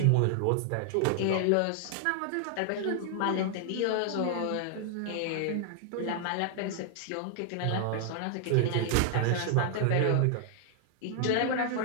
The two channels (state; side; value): different; both; correlation 0.00